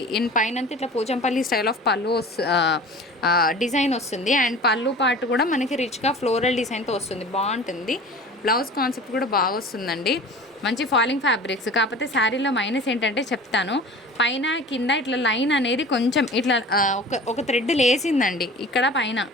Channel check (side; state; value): both; normal; correlation 0.40